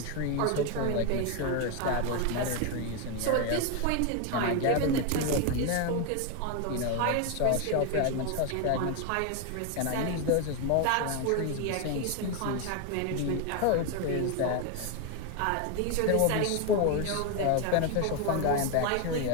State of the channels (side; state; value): both; different; correlation 0.01